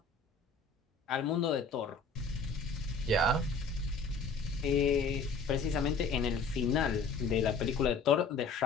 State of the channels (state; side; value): quieter; right; 4.3 dB